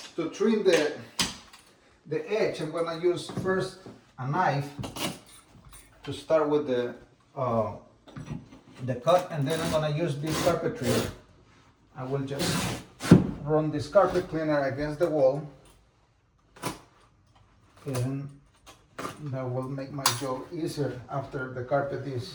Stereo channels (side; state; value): both; identical; correlation 1.00